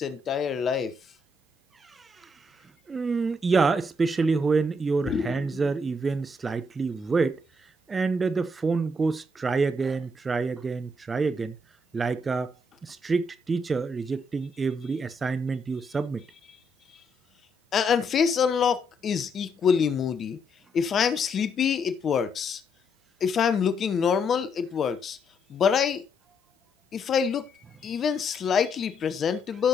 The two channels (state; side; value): normal; both; correlation 0.75